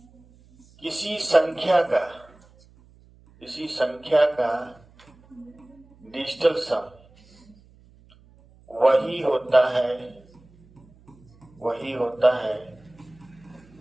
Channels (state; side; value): noise; right; hum, 28 dB below the sound